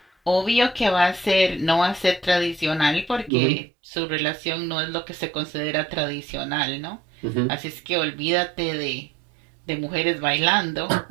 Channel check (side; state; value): left; drops out; at 3.3 s